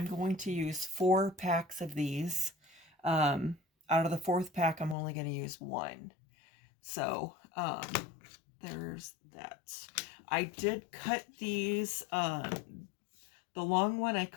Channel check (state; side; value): drops out; right; at 5.0 s